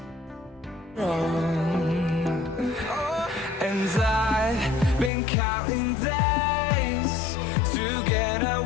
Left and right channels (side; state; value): right; drops out; at 5.1 s